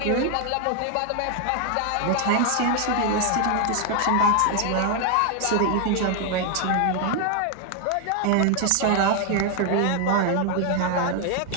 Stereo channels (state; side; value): different; both; correlation 0.00